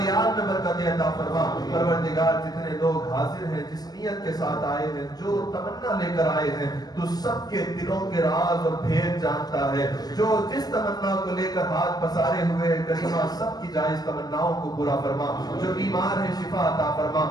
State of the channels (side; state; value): right; late; 0.19 ms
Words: میں برکت عطا فرما۔ پروردگار جتنے لوگ حاضر ہیں، جس نیت کے ساتھ آئے ہیں، جو تمنا لے کر آئے ہیں، تو سب کے دلوں کے راز اور بھید جانتا جانتا ہے. جو جس تمنا کو لے کر ہاتھ پسارے ہوئے ہیں کریمہ سب کی جائز تمناؤں کو پورا فرما. جو بیمار ہیں شفا عطا فرما.